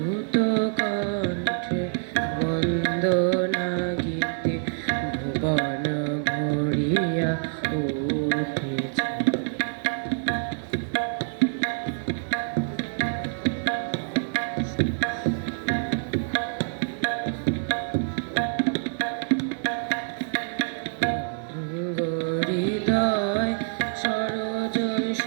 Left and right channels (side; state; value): left; silent; digital silence